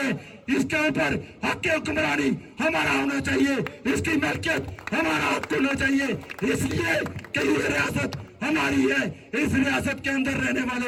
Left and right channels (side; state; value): both; identical; correlation 1.00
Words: इसके ऊपर हक की हुक्मरानी हमारा होना चाहिए, इसकी मलकियत हमारा हक होना चाहिए, इसलिए कि ये रियासत हमारी है। इस रियासत के अंदर रहने